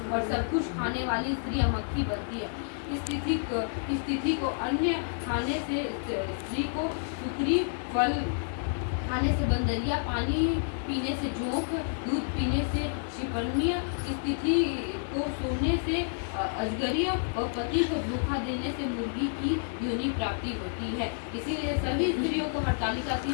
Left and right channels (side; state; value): right; silent; digital silence